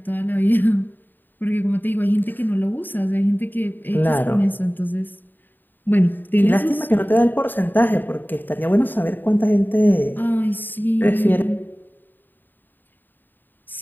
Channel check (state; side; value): late; right; 0.091 ms